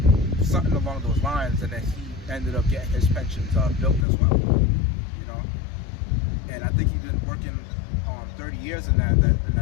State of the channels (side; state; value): right; drops out; at 4.0 s